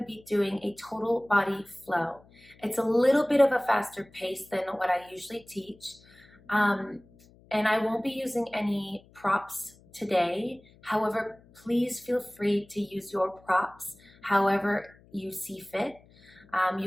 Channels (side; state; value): left; noise; hum, 27 dB below the sound